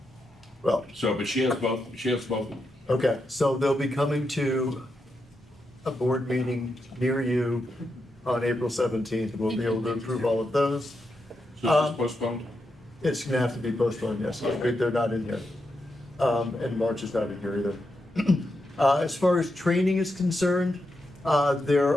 Well, So, but she has both. okay, so they'll be coming to a board meeting near you on April 17th. We'll be able to approve all of those. So it's postponed? It's gonna have to be postponed, yes. They're not in here. And March is not in here either. As far as training is concerned, we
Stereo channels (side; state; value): both; normal; correlation 0.85